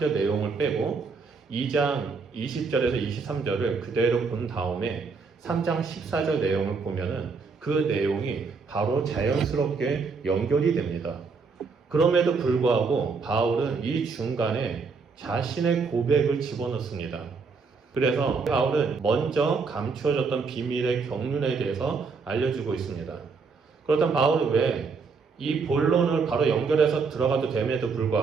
내용을 빼고 2장 20절에서 23절을 그대로 본 다음에 3장 14절 내용을 보면은 그 내용이 바로 자연스럽게 연결이 됩니다. 그럼에도 불구하고 바울은 이 중간에 자신의 고백을 집어넣습니다. 그래서 바울은 먼저 감추어졌던 비밀의 경륜에 대해서 알려주고 있습니다. 그렇다면 바울은 왜 이 본론을 바로 연결해서 들어가도 됨에도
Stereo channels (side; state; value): left; quieter; 4.8 dB